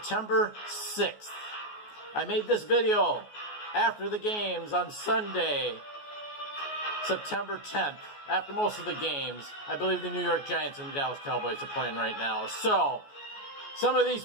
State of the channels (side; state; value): right; late; 14 ms